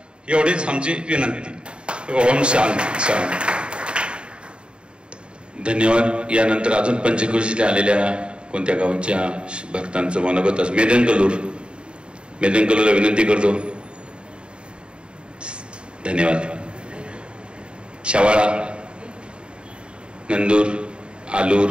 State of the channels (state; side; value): late; left; 0.053 ms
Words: एवढीच आमची विनंती. ओम शांती शांती. धन्यवाद. यानंतर अजून पंचकृषीला आलेल्या कोणत्या गावांच्या भक्तांचं मनोगत असं मेदनकलूरला विनंती करतो. धन्यवाद. शवाळा, नंदूर, आलूर,